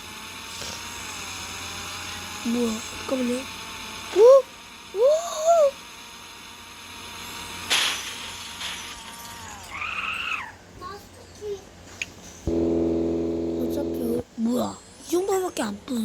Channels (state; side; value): identical; both; correlation 1.00